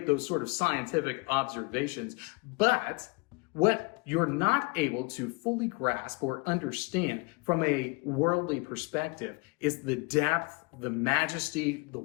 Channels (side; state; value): right; quieter; 29.3 dB